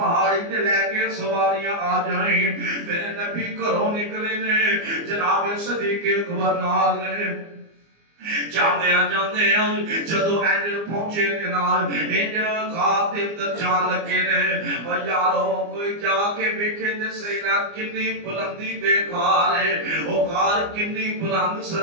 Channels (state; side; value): late; left; 24 ms